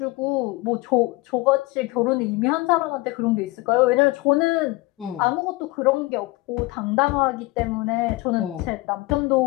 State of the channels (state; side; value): quieter; right; 21.6 dB